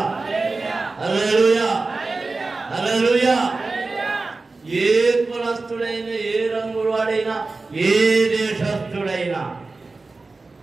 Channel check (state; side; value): quieter; left; 3.6 dB